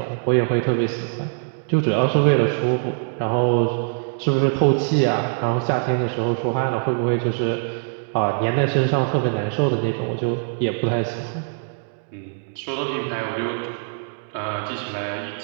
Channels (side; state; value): left; silent; 64 dB below the other